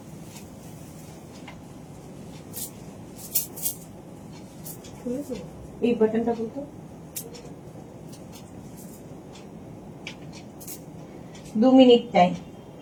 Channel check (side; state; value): both; identical; correlation 1.00